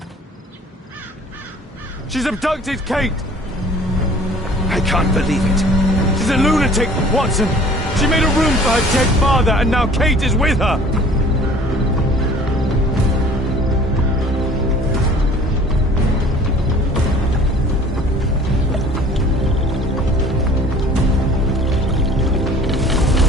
She's abducted Kate! I can't believe it. She's a lunatic, Watson! She made a room for her dead father, and now Kate is with her!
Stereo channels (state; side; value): normal; both; correlation 0.50